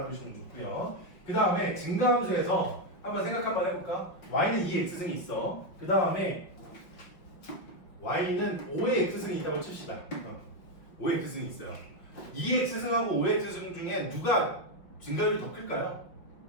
좋고요. 그 다음에 증가함수에서 한번 생각 한번 해볼까? y는 2의 x승이 있어. 그 다음에 y는 5의 x승이 있다고 칩시다. 5의 x승이 있어요. 2의 x승하고 5의 x승 중에 누가 증가율이 더 클까요?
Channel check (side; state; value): right; late; 5.3 ms